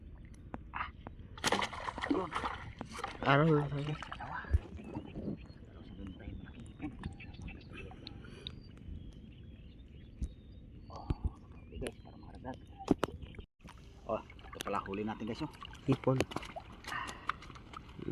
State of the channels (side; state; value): both; identical; correlation 1.00